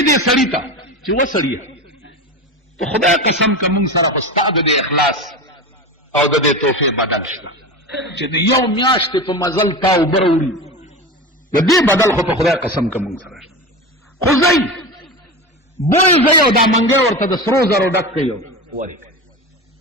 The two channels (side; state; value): both; normal; correlation 0.25